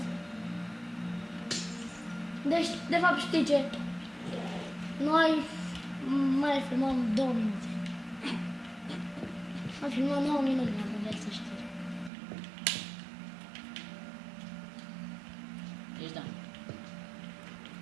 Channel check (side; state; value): left; drops out; at 12.1 s